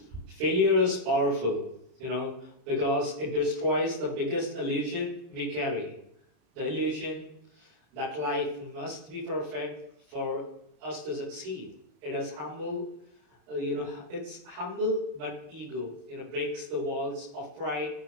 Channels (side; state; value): left; late; 34 ms